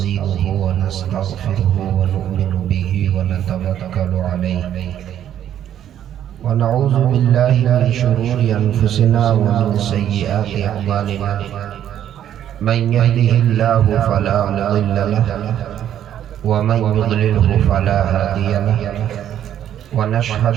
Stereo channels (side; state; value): left; quieter; 10.6 dB